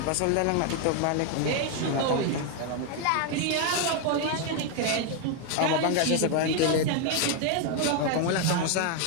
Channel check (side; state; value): both; different; correlation 0.01